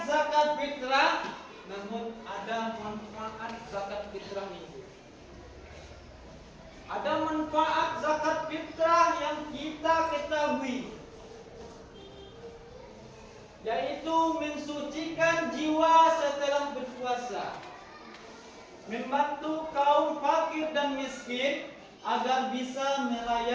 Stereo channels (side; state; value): both; identical; correlation 1.00